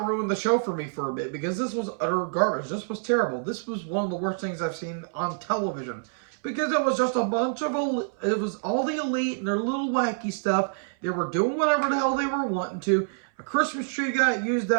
ruined the show for me for a bit, because this was utter garbage. This was terrible. This was one of the worst things I've seen on television, because it was just a bunch of, it was all the Elite and their little wacky stuff. They were doing whatever the hell they were wanting to. A Christmas tree got used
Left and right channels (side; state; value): left; silent; 60 dB below the other